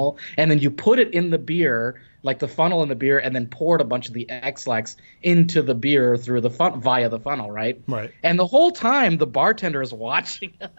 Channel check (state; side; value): inverted; both; correlation -1.00